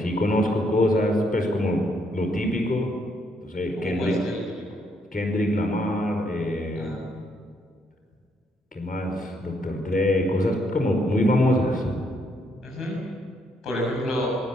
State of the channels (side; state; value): both; normal; correlation 0.73